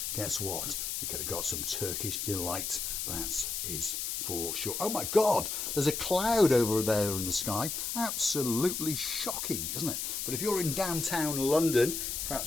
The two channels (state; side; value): noise; left; hiss, 3 dB below the sound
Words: Guess what? You could have got some Turkish delight. That is for sure. Oh my God, there's a cloud over there in the sky. Absolutely shocking, isn't it? But if you're in downtown London,